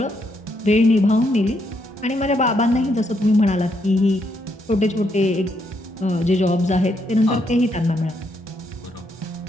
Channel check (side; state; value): both; normal; correlation 0.76